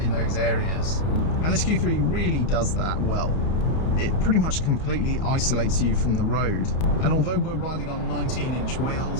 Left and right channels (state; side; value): late; right; 31 ms